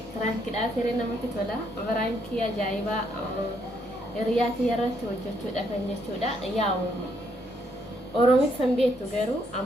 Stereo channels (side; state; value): both; normal; correlation 0.73